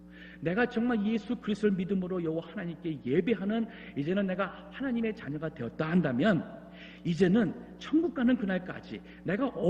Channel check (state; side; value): identical; both; correlation 1.00